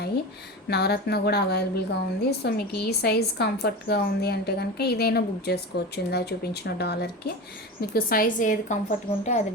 నవరత్న కూడా అవైలబుల్గా ఉంది. సో మీకు ఈ సైజ్ కంఫర్ట్గా ఉంది అంటే కనుక ఇదైనా బుక్ చేసుకోవచ్చు. ఇందా చూపించిన డాలర్కి మీకు సైజ్ ఏది కంఫర్ట్గా ఉంటే అది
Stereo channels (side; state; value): both; normal; correlation 0.27